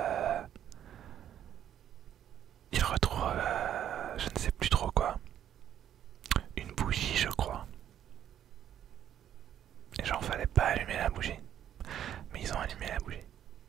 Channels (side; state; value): left; quieter; 10.4 dB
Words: Il retrouve, je ne sais plus trop quoi, une bougie, je crois. Et genre, fallait pas allumer la bougie. Mais ils ont allumé la bougie,